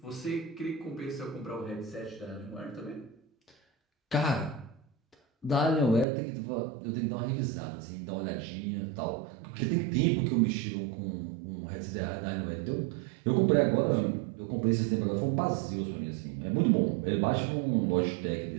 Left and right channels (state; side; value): drops out; left; at 6.1 s